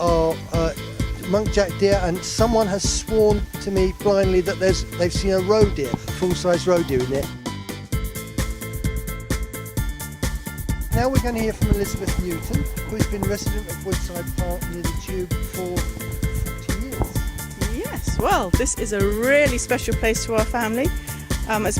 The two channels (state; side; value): identical; both; correlation 1.00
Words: muntjac deer, and someone has sworn to me blindly that they've seen a roe deer, full-size roe deer in there. Now we're going to hear from Elizabeth Mutant, who's been resident of Woodside Park near the Tube for 40 years. Yes, well, this is a really special place to our family. As